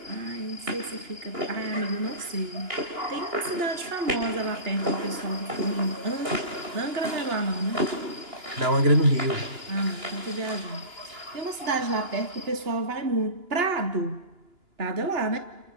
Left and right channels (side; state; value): left; late; 2.9 ms